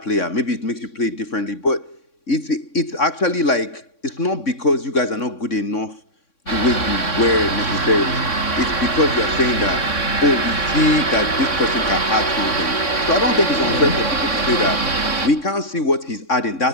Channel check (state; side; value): late; right; 3.6 ms